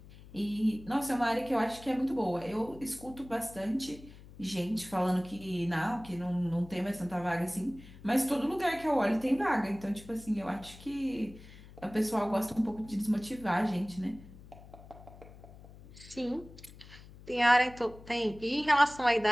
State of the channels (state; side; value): noise; left; hum, 19 dB below the sound